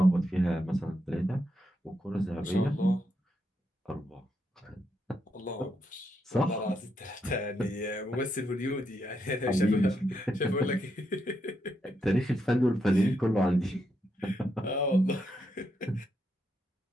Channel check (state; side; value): normal; both; correlation 0.80